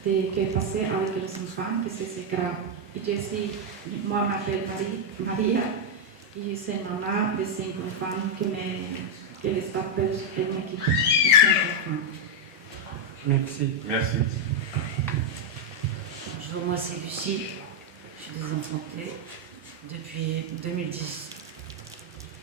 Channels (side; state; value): both; normal; correlation 0.00